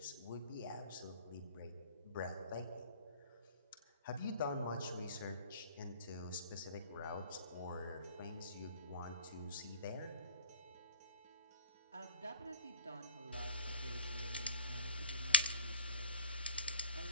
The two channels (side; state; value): both; inverted; correlation -0.43